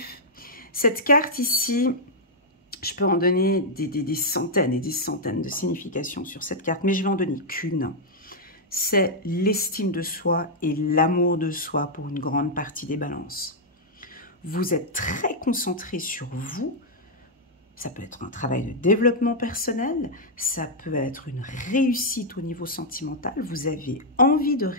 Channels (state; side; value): normal; both; correlation -0.05